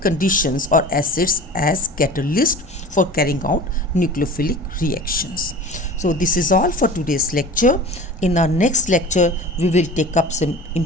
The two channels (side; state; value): both; normal; correlation 0.38